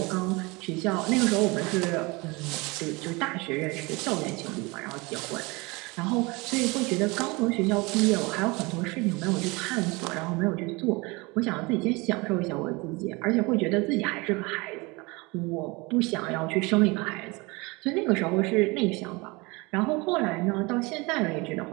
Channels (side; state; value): left; quieter; 25.5 dB